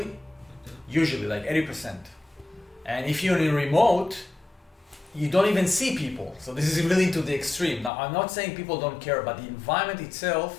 like 80%. And if you're in remote, you don't even see people. So this is really to the extreme. Now, I'm not saying people don't care, but the environment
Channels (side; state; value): right; drops out; at 7.9 s